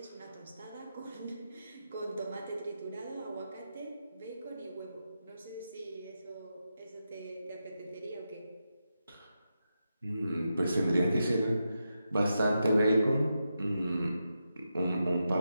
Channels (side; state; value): both; inverted; correlation -0.88